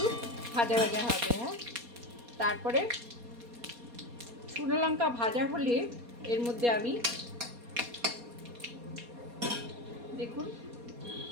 ভাজা ভাজা হবে। হ্যাঁ, তারপরে শুকনো লঙ্কা ভাজা হলে এর মধ্যে আমি দেখুন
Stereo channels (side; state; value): left; late; 4.2 ms